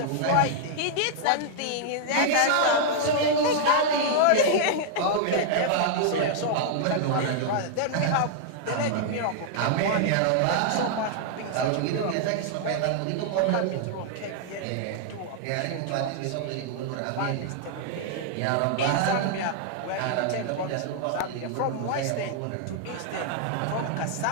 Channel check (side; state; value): both; different; correlation -0.01